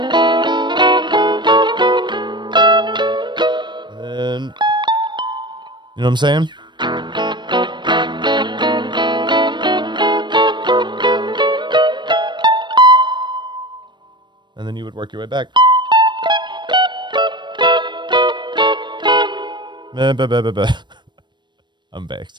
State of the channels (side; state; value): left; late; 0.22 ms